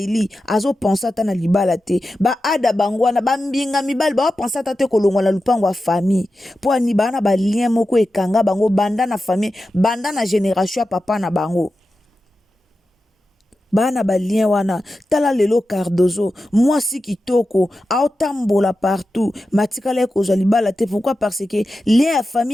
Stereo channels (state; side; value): normal; both; correlation 0.92